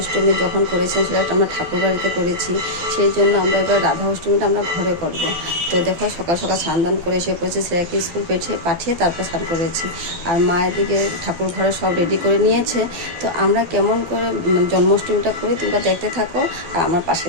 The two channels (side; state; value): left; late; 12 ms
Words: যখন করেছিলাম সেটা আমরা ঠাকুর বাড়িতে করেছি, সেই জন্য আমরা এবার রাধা অষ্টমীটা আমরা ঘরে করব। তো দেখো সকাল সকাল স্নান করে এসে পড়েছি, শ্রেয়াকে স্কুল পাঠিয়ে তারপর স্নান করেছি। আর মায়ের দিকে ঠাকুর ঘরে সব রেডি করে নিয়েছে। তো আমরা কেমন করে জন্মাষ্টমীটা করি তোমরা দেখতে থাকো আর আমার পাশে